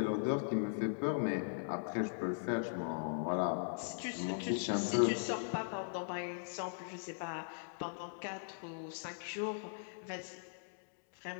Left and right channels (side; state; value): right; silent; digital silence